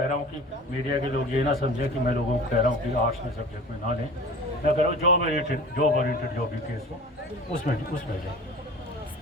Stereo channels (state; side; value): normal; both; correlation 0.40